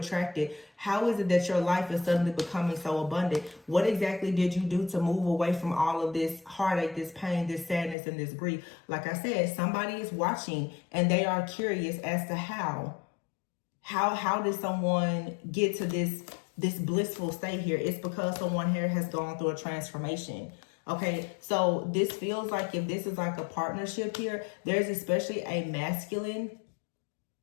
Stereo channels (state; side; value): drops out; right; at 8.0 s